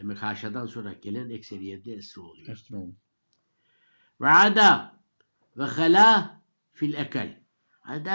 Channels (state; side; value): inverted; both; correlation -1.00